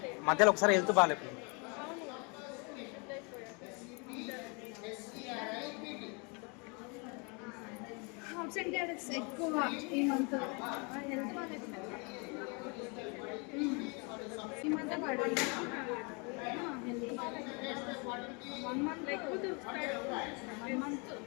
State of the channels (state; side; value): quieter; right; 32.6 dB